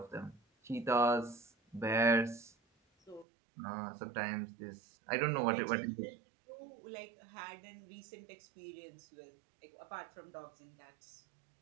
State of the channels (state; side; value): drops out; left; at 3.2 s